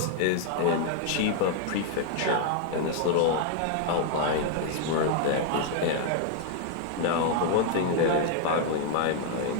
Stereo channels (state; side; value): different; both; correlation 0.00